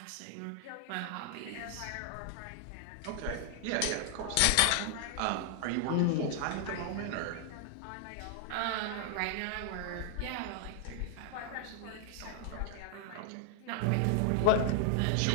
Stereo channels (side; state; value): both; different; correlation 0.00